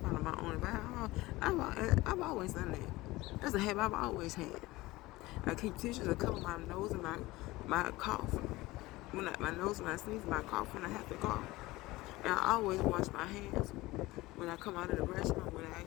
my own advice. I've always done that. That's a habit I've always had. I keep tissues to cover my nose and my cough. My nose when I sneeze, my cough when I have to cough. And I always wash my hands when I come out of the restroom, when I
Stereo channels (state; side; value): quieter; right; 19.6 dB